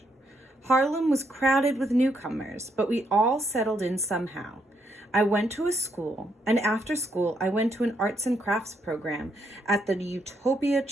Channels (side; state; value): both; normal; correlation 0.76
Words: Harlem was crowded with newcomers, but we all settled in somehow. I went to a school, and after school, I went to an arts and crafts program at the Utopia